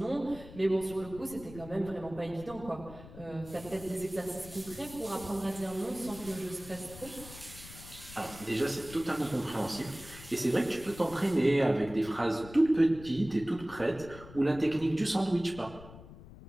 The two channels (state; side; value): noise; left; rumble, 16 dB below the sound